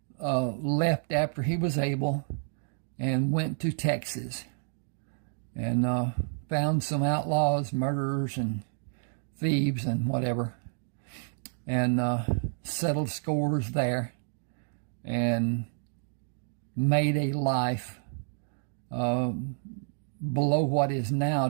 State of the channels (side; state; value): left; silent; digital silence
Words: left after he was able and went to Texas, and found some outlaws, murderers and thieves and whatever, and settled scores there, and made a life below what is now